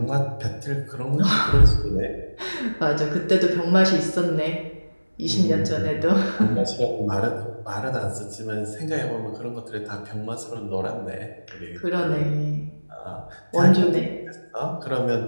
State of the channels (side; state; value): both; inverted; correlation -1.00